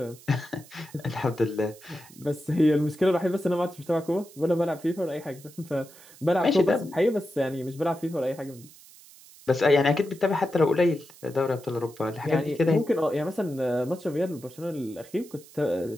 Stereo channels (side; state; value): right; noise; hiss, 22 dB below the sound